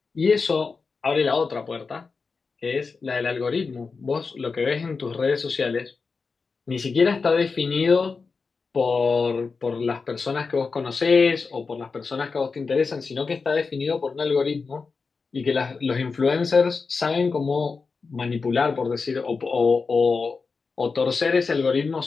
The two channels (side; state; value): right; quieter; 4.7 dB